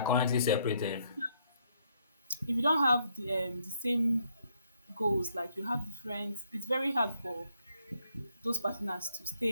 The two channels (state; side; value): inverted; both; correlation -0.72